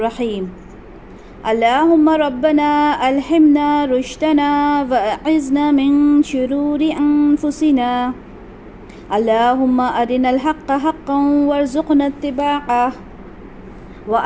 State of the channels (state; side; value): identical; both; correlation 1.00